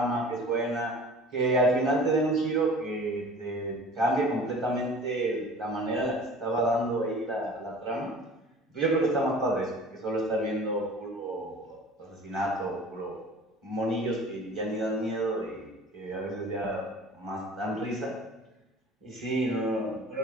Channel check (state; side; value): normal; both; correlation 0.44